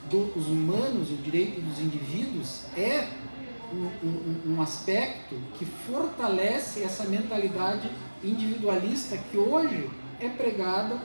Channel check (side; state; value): both; inverted; correlation -1.00